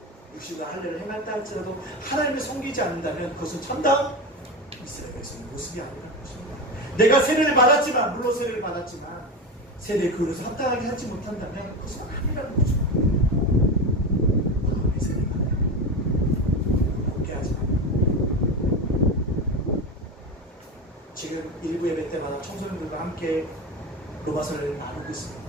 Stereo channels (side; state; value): both; normal; correlation 0.21